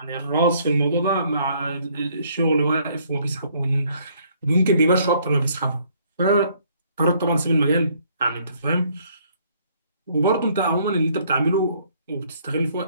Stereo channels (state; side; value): inverted; both; correlation -0.64